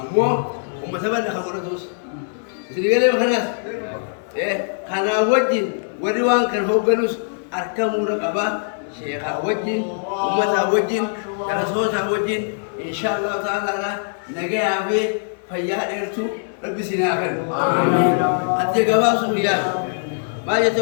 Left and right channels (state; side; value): silent; right; digital silence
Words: ummata bala khamratus Sedikit makanlah, karena wajin, wadiwan kan hoganus arkam muda kaba, syekh wajin, umat wajin, rasul wajin, insyaallah taala lah, negara abe, fayad ertu, lebih sinakan. Aja kaba suliah, macam